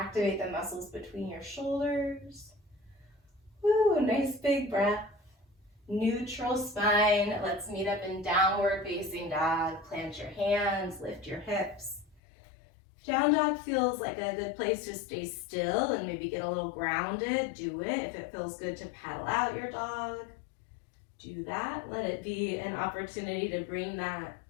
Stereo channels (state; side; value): drops out; right; at 12.2 s